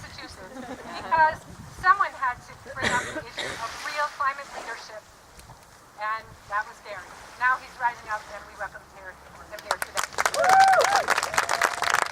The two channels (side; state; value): both; identical; correlation 1.00